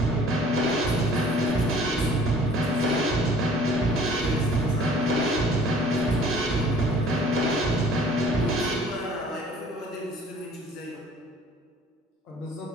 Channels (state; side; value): normal; both; correlation 0.52